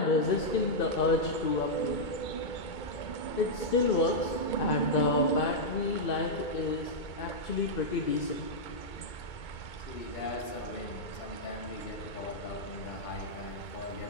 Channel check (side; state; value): right; late; 2.2 ms